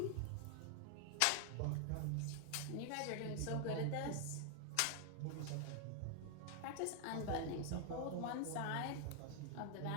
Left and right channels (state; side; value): different; both; correlation 0.00